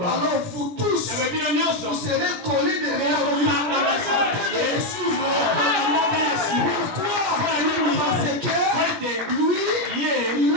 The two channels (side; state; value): left; late; 17 ms